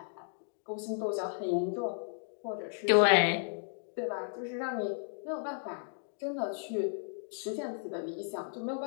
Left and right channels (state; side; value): silent; right; digital silence